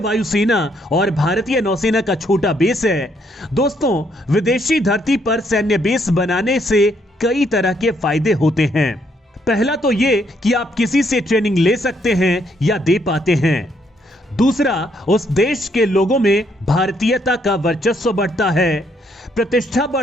और भारतीय नौसेना का छोटा बेस है। दोस्तों, विदेशी धरती पर सैन्य बेस बनाने से कई तरह के फायदे होते हैं। पहला तो ये कि आप किसी से ट्रेनिंग ले सकते हैं या दे पाते हैं। दूसरा, उस देश के लोगों में भारतीयता का वर्चस्व बढ़ता है, प्रतिष्ठा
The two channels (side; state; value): both; normal; correlation 0.71